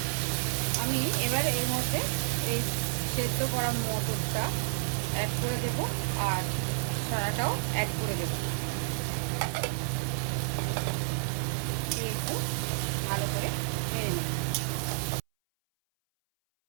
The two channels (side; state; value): left; silent; 58 dB below the other